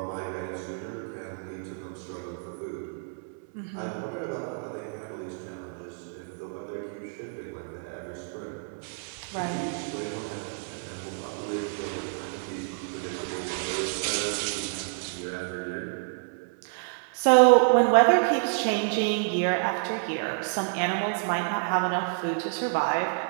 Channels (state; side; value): silent; left; 59 dB below the other